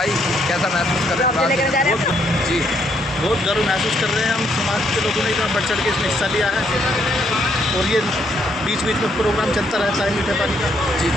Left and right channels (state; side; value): normal; both; correlation 0.72